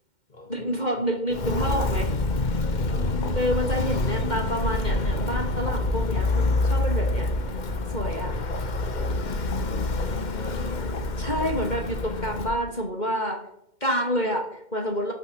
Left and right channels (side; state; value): right; late; 2.1 ms